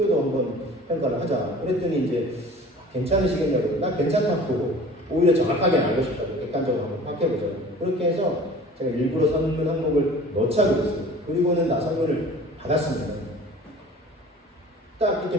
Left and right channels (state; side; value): normal; both; correlation 0.44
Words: 한번 평가를 하자. 그랬더니 이제 괜찮으시겠냐고. 나 괜찮다고 오히려 정확하게 알고 싶다고 객관적으로 한번 파악해보자. 그렇게 해서 제가 일부러 설문 항목을 넣자고 했어요. 그리고는 나 설문을 받았습니다. 딱